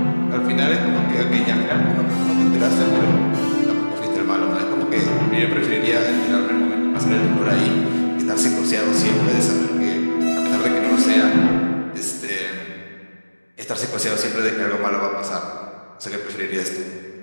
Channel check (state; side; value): inverted; both; correlation -1.00